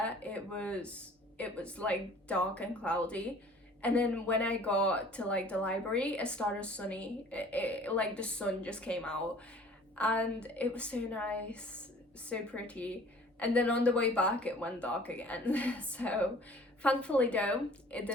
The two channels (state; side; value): normal; both; correlation 0.50